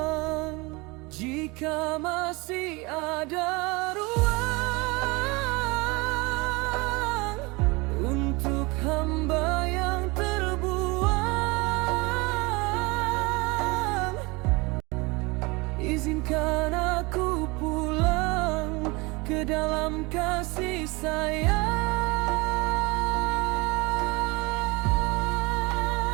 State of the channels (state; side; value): quieter; left; 25.5 dB